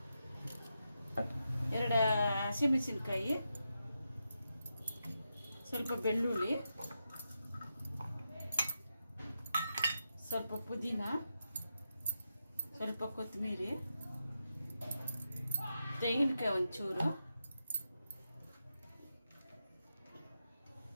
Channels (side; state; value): both; inverted; correlation -0.87